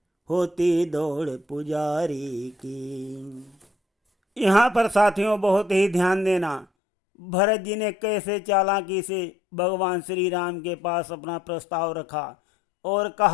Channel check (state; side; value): drops out; right; at 6.7 s